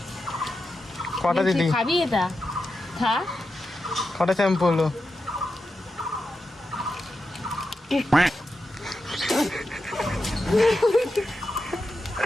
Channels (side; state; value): both; normal; correlation 0.89